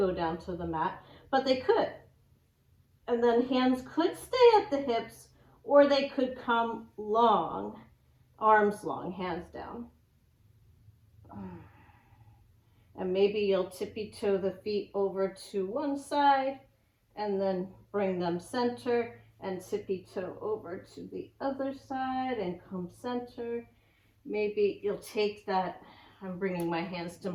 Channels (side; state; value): both; identical; correlation 1.00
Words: down to the mat, but they could. And then hands could stay at the hips or they could come long, arms long, hands down. And maybe you'll tippy toe the feet over to one side and then bring them center and tippy toe over to the other side and come center. Maybe you'll take that, I'm bringing my hands to